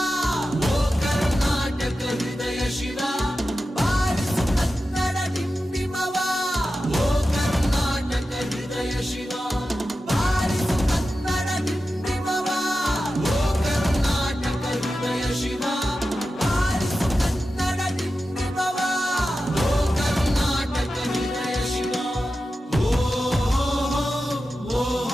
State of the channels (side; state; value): both; normal; correlation 0.92